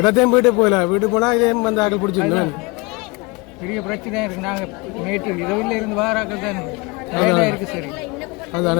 போயிட்டு போகல. வீட்டு போனால் இதே வந்து ஆக்கள் பிடிச்சிருந்தேன். பெரிய பிரச்சனையாக இருக்குது. நாங்கள் நேற்று இரவில் இருந்து வாராக்கள் தான் வேலையாக இருக்குது. சரி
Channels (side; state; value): right; quieter; 26.6 dB